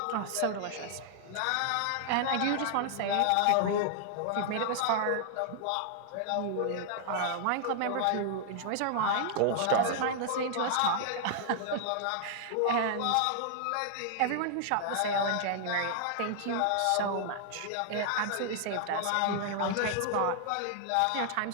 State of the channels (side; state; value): both; different; correlation 0.00